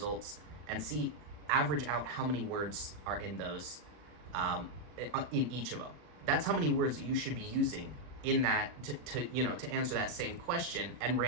and average out how many words are in those, in each of them. That's how many words that you should be using in that to answer that same question and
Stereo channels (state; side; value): late; left; 40 ms